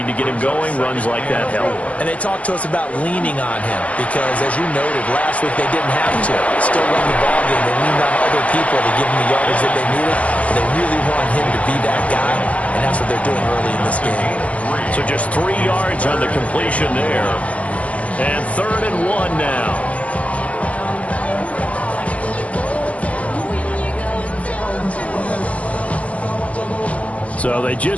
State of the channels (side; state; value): right; late; 0.065 ms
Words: to get him going. Runs like that help. And they talked to us about leaning on him because, as you noted, last week they didn't have to. Still run the ball game. They leaned on other people to give them the yardage that they needed. And they really want him to be that guy, and that's what they're doing early in this game. So just 3 yards on the completion there. And 3rd and 1 now. So they